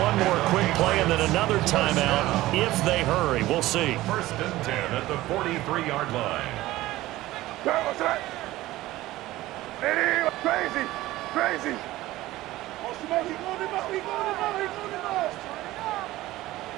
more quick play and then another timeout if they hurry. We'll see. 1st and 10 at the 43-yard line. Crazy, crazy. He going him out, he going him out, he going him out.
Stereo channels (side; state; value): left; quieter; 16.9 dB